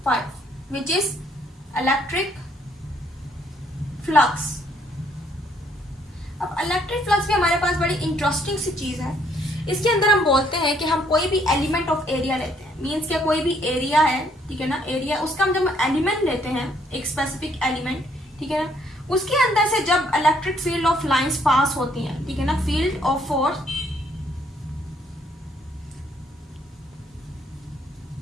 विच इज इलेक्ट्रिक फ्लक्स। अब इलेक्ट्रिक फ्लक्स भी हमारे पास बड़ी इंटरेस्टिंग सी चीज है। इसके अंदर हम बोलते हैं कि हम कोई भी एलिमेंट ऑफ एरिया लेते हैं, मीन्स क्या कोई भी एरिया है, ठीक है ना, एरिया, उसका हम जब एलिमेंट लेते हैं, एक स्पेसिफिक एलिमेंट, ठीक है ना, उसके अंदर से जब electric field of lines pass होती हैं, ठीक है ना, फील्ड ऑफ फोर्स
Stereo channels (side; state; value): both; normal; correlation 0.67